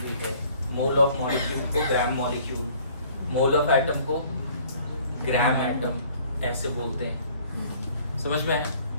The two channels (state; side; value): inverted; both; correlation -0.55